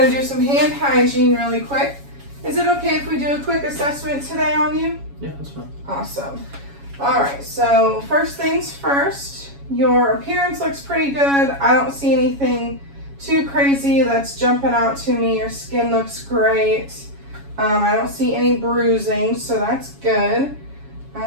and do some hand hygiene really quick. Is it okay if we do a quick assessment today on you? Yeah, that's fine. Awesome. All right, so first things first, your appearance looks pretty good. I don't see anything too crazy that's jumping out to me. Your skin looks great. I don't see any bruising, so that's good.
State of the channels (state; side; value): late; left; 7.2 ms